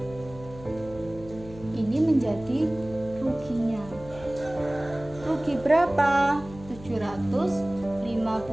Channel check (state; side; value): noise; left; hum, 17 dB below the sound